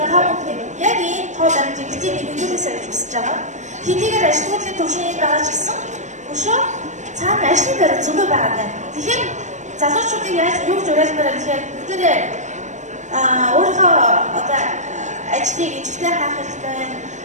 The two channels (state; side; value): late; left; 0.35 ms